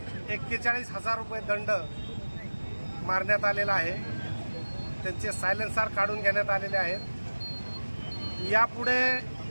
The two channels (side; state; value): both; inverted; correlation -1.00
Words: 41,000 रुपये दंड मारण्यात आलेला आहे। त्यांचे सायलेन्सर काढून घेण्यात आलेले आहेत। यापुढे